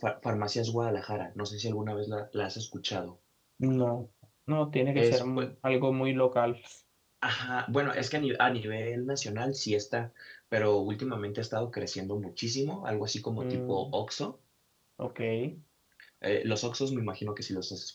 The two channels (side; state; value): both; identical; correlation 1.00